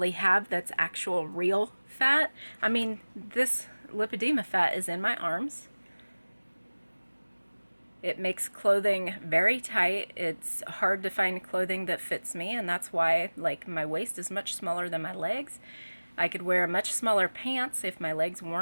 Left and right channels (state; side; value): inverted; both; correlation -1.00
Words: have, that's actual real fat. I mean, this lipedema fat is in my arms. It makes clothing very tight. It's hard to find clothing that fits me, and that's why like my waist is much smaller than my legs. I could wear much smaller pants if my legs